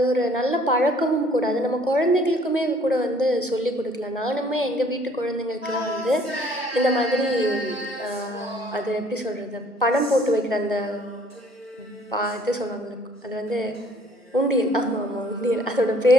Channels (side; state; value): both; normal; correlation 0.58